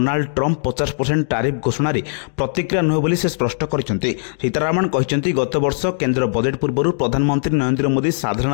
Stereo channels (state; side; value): silent; right; digital silence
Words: ट्रंप 50% टारिफ घोषणा प्रतिक्रिया नुहे बोली से स्पष्ट करछन्ते। सीतारामन कहते गत वर्ष केंद्र बजेट पूर्व प्रधानमंत्री नरेंद्र मोदी